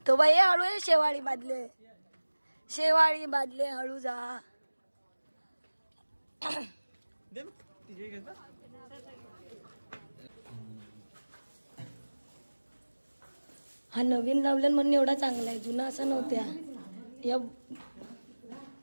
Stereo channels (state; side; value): inverted; both; correlation -1.00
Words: तो बाई हळू आहे. शेवाळी बादले, शेवाळी बादले, हळू जा. हा नवीन लावलं म्हणून एवढा चांगला आहे. जुना असा नव्हत्या. या